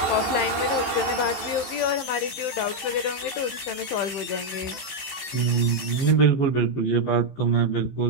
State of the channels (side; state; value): right; late; 15 ms